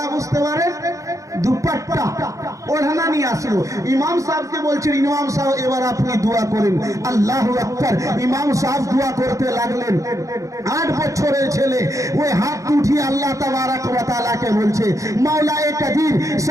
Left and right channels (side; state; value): left; late; 0.16 ms